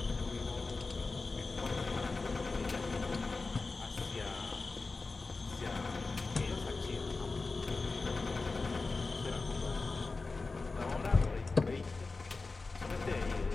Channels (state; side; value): quieter; right; 3.8 dB